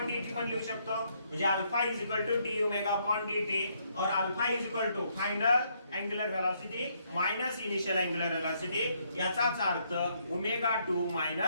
d t पण लिहू शकतो. म्हणजे alpha is equal to d omega upon d t और alpha is equal to final angular velocity minus initial angular velocity. याचाच अर्थ omega 2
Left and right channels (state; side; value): inverted; both; correlation -0.72